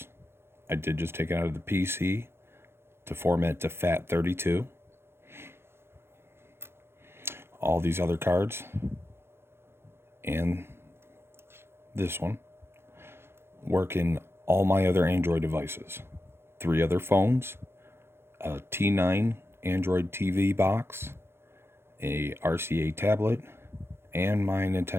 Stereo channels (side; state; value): left; late; 0.12 ms